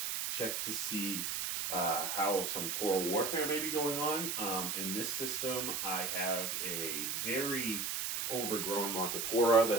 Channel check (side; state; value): right; noise; hiss, 1 dB below the sound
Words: check to see how some coral warfare may be going on. In this system, I have a very overgrown Montipora